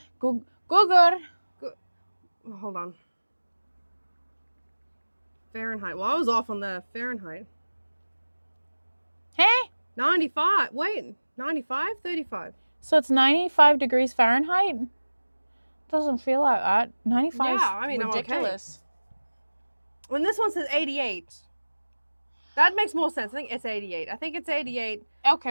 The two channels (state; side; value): inverted; both; correlation -1.00